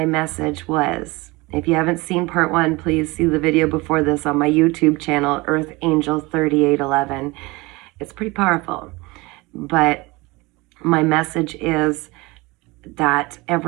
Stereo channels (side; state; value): left; quieter; 23.5 dB